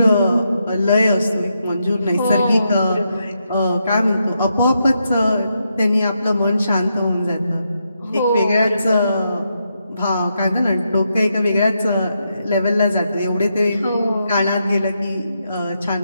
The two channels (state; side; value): inverted; both; correlation -0.82